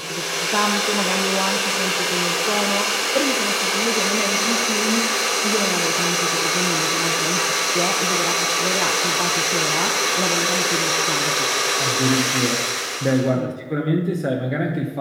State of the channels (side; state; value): both; identical; correlation 1.00